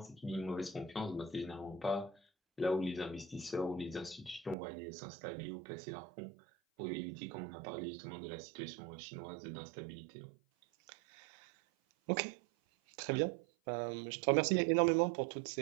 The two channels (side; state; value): left; drops out; at 4.5 s